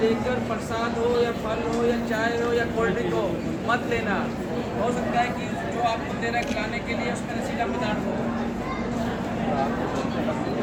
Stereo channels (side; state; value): both; identical; correlation 1.00